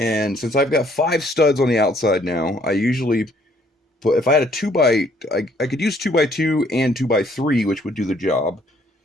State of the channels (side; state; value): both; normal; correlation 0.64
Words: since I've got 5 studs on the outside now, I usually put, if I had a I could use 2x2 and 2x3, which would do the job.